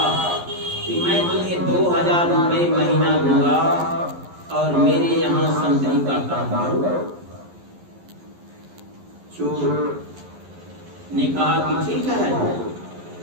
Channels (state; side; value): late; left; 11 ms